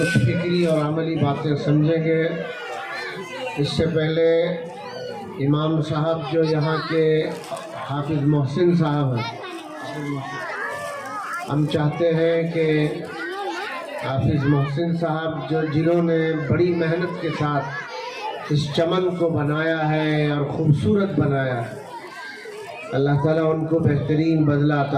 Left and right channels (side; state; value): both; identical; correlation 1.00